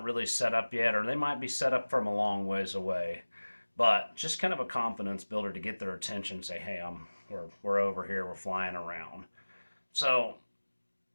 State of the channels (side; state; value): both; inverted; correlation -1.00